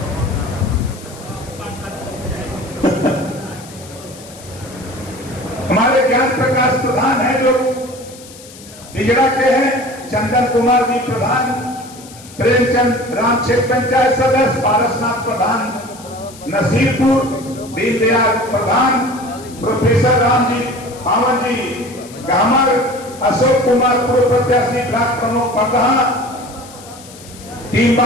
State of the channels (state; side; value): noise; left; hiss, 19 dB below the sound